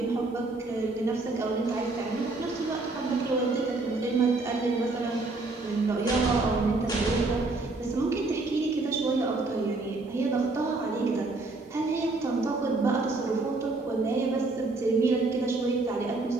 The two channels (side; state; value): left; quieter; 3.3 dB